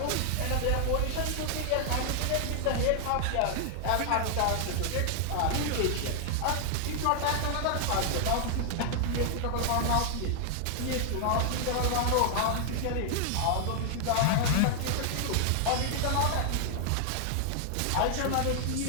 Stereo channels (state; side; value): different; both; correlation 0.00